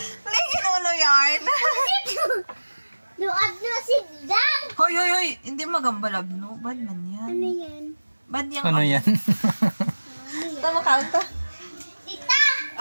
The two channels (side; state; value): both; inverted; correlation -1.00